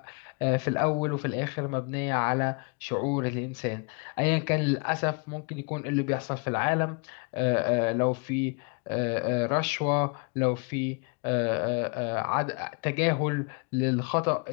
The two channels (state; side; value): quieter; right; 34.0 dB